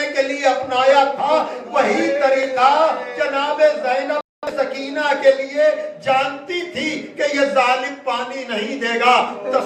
کے لیے اپنایا تھا، وہی طریقہ جناب زینب سکینہ کے لیے جانتی تھی کہ یہ ظالم پانی نہیں دے گا.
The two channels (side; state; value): both; identical; correlation 1.00